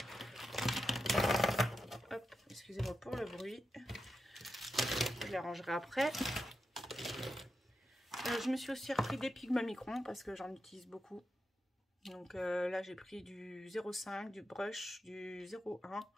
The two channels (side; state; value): both; normal; correlation 0.88